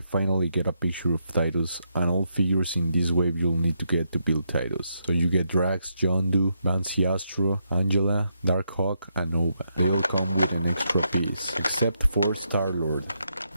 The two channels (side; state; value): both; inverted; correlation -0.80